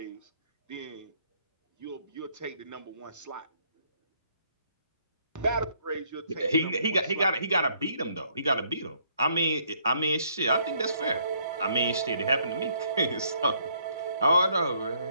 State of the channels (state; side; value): inverted; both; correlation -0.68